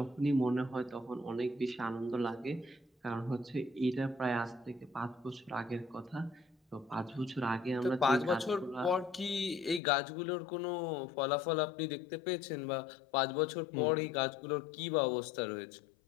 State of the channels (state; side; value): drops out; right; at 9.8 s